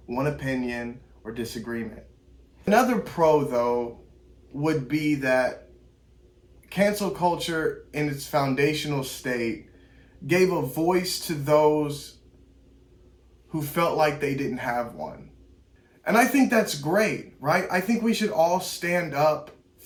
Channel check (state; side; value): identical; both; correlation 1.00